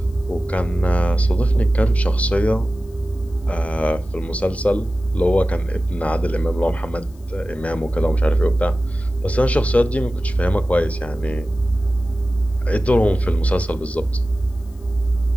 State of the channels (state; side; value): noise; left; hiss, 30 dB below the sound